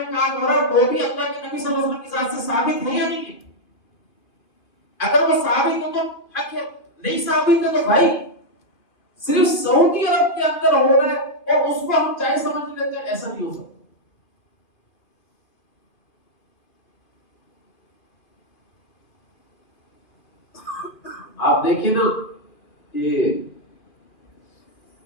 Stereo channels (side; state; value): right; late; 2.4 ms